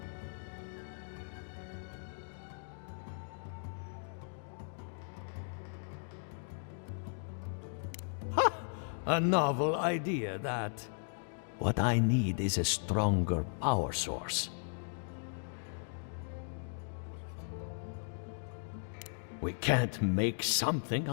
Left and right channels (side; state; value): right; silent; digital silence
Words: A novel idea, that. What I need is a stronger power source. We can't make something